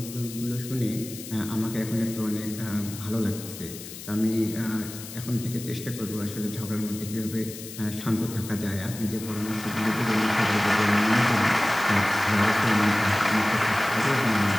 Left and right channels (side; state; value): left; noise; hiss, 13 dB below the sound